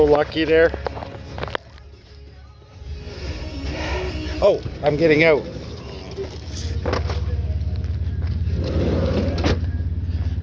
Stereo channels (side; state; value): both; identical; correlation 1.00